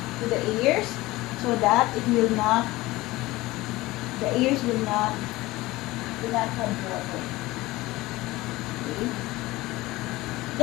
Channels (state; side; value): quieter; right; 19.2 dB